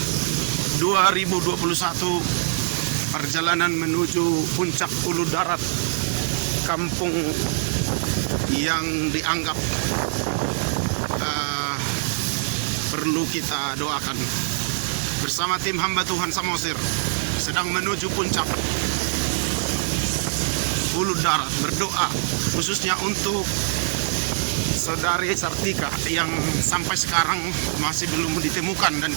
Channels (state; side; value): silent; left; digital silence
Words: 2021, perjalanan menuju puncak Ulu Darat, kampung yang dianggap perlu kita doakan. Bersama tim hamba Tuhan Samosir sedang menuju puncak Ulu Darat, berdoa khususnya untuk saudari Sartika yang sampai sekarang masih belum ditemukan, dan